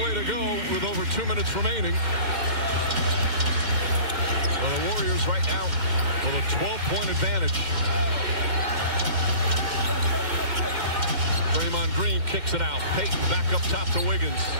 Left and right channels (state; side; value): late; left; 2.1 ms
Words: play to go with over 2 minutes remaining. Well, the Warriors right now with a 12-point advantage. Draymond Green kicks it out. Payton back up top to Wiggins.